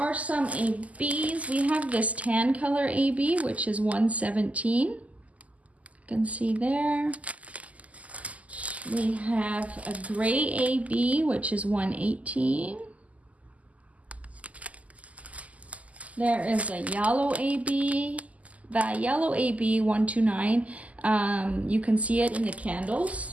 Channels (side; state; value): left; late; 0.071 ms